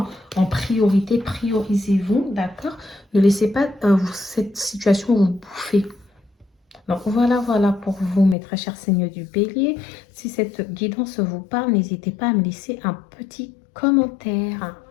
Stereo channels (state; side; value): drops out; right; at 8.3 s